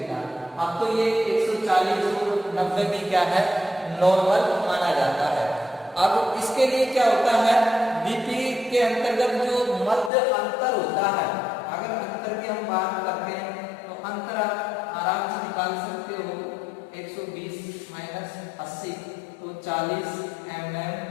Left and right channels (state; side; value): drops out; right; at 10.1 s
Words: है। अब तो ये 140 और 90 भी क्या है, नॉर्मल माना जाता है। अब इसके लिए क्या होता है, बीपी के अंतर्गत जो मध्य अंतर होता है, अगर अंतर की हम बात करते हैं तो अंतर आराम से निकाल सकते हो। 120 माइनस 80 तो 40